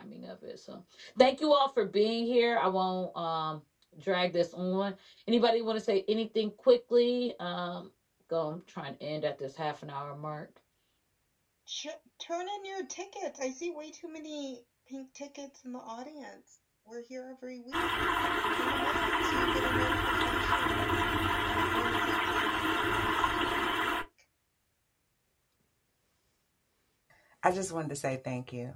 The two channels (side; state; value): both; identical; correlation 1.00